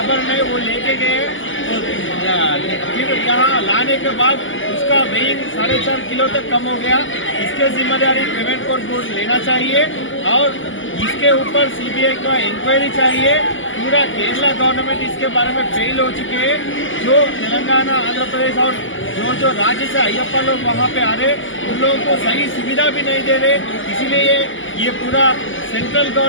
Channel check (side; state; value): right; late; 0.57 ms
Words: है वो लेके गए, फिर यहाँ लाने के बाद उसका वेइंग 4.5 किलो तक कम हो गया। इसके जिम्मेदारी ट्रेवेंकोर बोर्ड लेना चाहिए और इसके ऊपर सीबीआई का इंक्वायरी चाहिए। पूरा केरला गवर्नमेंट इसके बारे में फेल हो चुके हैं। जो तेलंगाना, आंध्र प्रदेश और जो राज्य से अय्यप्पा लोग वहाँ पे आ रहे उन लोगों को सही सुविधा भी नहीं दे रहे। इसीलिए ये पूरा सेंट्रल